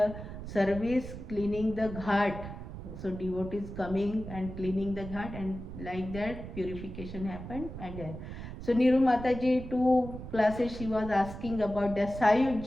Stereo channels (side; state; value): right; noise; rumble, 10 dB below the sound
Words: service cleaning the ghat. So devotees coming and cleaning the ghat, and like that purification happened. And so Niru Mataji, 2 classes she was asking about the